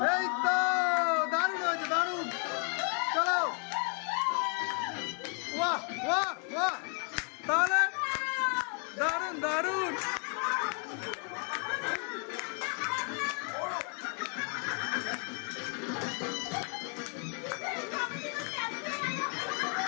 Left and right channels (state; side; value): quieter; right; 39.0 dB